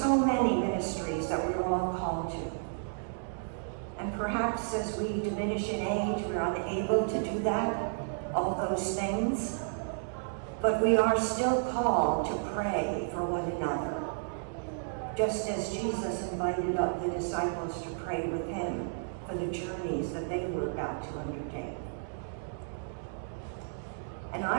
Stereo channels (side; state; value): left; silent; digital silence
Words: many ministries that we're all called to. And perhaps as we diminish in age, we're unable to do that, all those things. But we are still called to pray for one another, just as Jesus invited up the disciples to pray with him for the journeys that they were about to undertake. And